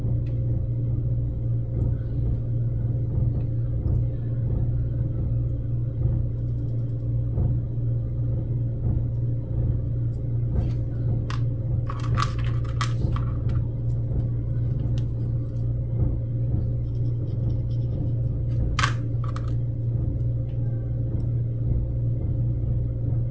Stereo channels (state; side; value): identical; both; correlation 1.00